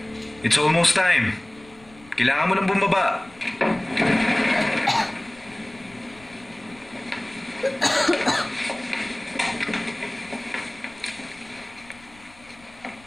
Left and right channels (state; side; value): noise; left; rumble, 25 dB below the sound